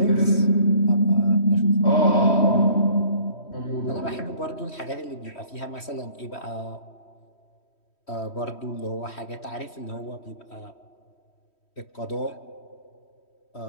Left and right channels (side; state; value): right; late; 3.1 ms